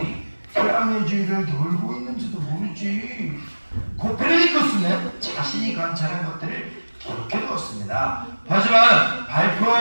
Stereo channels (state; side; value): inverted; both; correlation -1.00